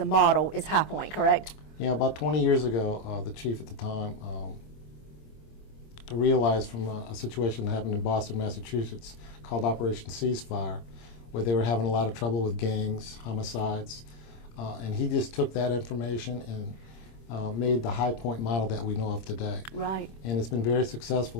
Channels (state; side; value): late; right; 26 ms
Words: model is High Point, correct? Yeah, about 20 years ago, the chief at the time realized from a situation that happened in Boston, Massachusetts, called Operation Ceasefire, where they were having a lot of trouble with gangs, homicides, and he just took that information and made the High Point model that we know of today. Right. And it's been very